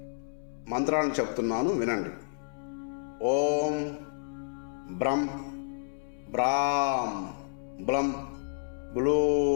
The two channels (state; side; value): silent; right; 58 dB below the other